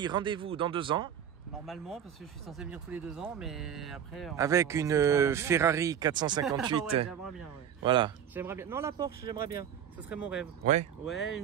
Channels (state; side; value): quieter; left; 8.9 dB